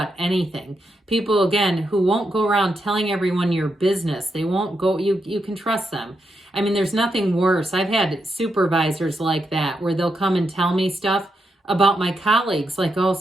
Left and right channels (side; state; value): both; normal; correlation 0.83